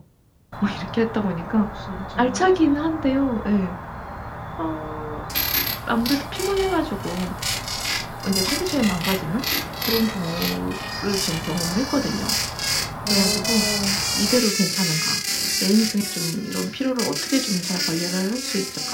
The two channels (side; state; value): both; identical; correlation 1.00